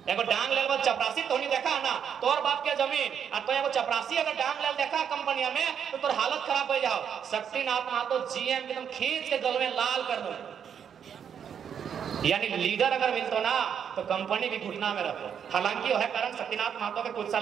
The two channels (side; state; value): left; quieter; 8.0 dB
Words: एगो डांग ले चपरासी तोहनी देखा ना तोर बाप के जमीन और तो एगो चपरासी अगर डांग ले देखा कंपनिया में तो तोर हालत खराब हो जाओ। शक्तिनाथ महतो जीएम एकदम खींच के गल में लाल कर दो। यानी लीडर अगर मिलतो ना तो कंपनी भी घुटना में रखो। हालांकि वह कारण शक्तिनाथ महतो के कुछ साल